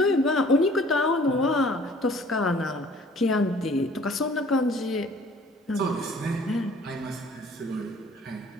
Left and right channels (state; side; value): normal; both; correlation 0.53